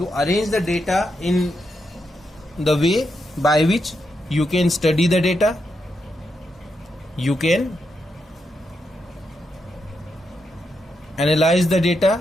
arrange the data in the way by which you can study the data, you can analyze the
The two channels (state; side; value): normal; both; correlation 0.83